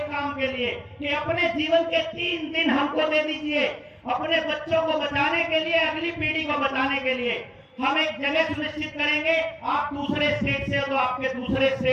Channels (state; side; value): identical; both; correlation 1.00